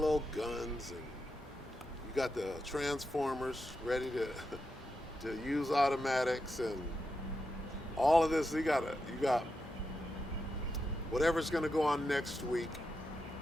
guns, and you got the Transformers ready to use automatics, and all of this. You got whatever's going to go on next week,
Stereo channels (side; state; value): both; normal; correlation 0.87